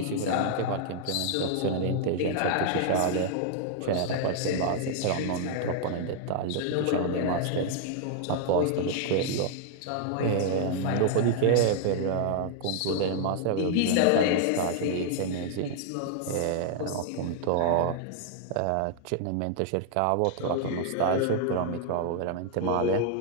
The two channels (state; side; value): different; both; correlation 0.00